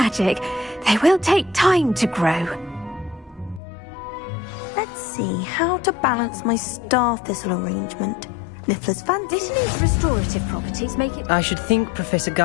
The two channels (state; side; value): drops out; right; at 3.6 s